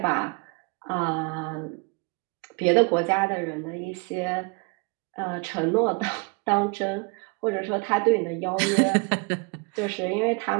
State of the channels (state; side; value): quieter; left; 31.6 dB